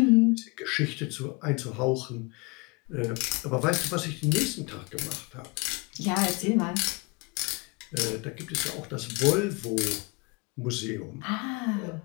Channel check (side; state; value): right; quieter; 28.3 dB